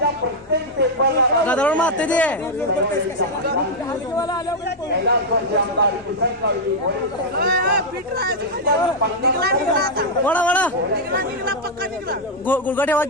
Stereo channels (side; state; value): both; normal; correlation -0.02